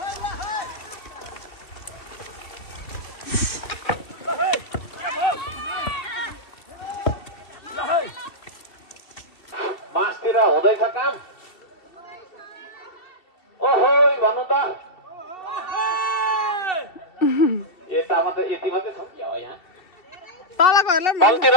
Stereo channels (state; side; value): late; right; 2.7 ms